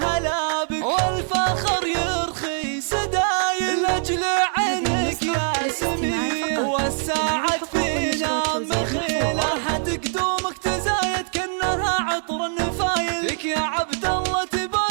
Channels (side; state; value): left; silent; 60 dB below the other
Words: بك والفخر يرخي سدايل لاجل عينك يا سمي والساعد فينا مخيله حد قدومك تزايد كأنها عطر النفايل لك يا عبد الله